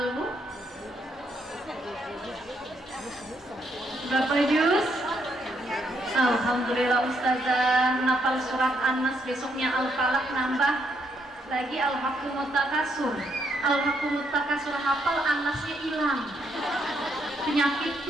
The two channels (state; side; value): normal; both; correlation 0.75